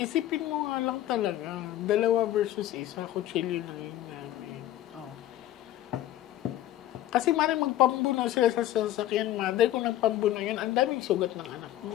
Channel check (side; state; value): right; quieter; 13.5 dB